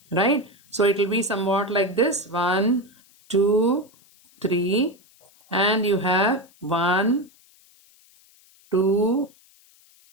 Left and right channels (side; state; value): left; noise; hiss, 30 dB below the sound